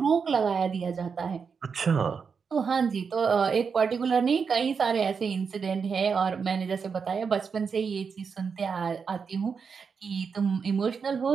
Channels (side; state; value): left; quieter; 5.9 dB